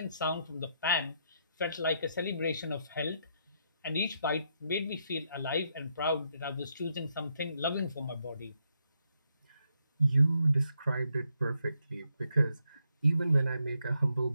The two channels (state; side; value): inverted; both; correlation -0.78